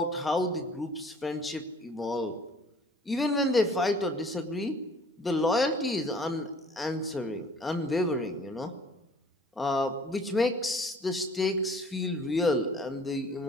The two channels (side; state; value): both; normal; correlation 0.53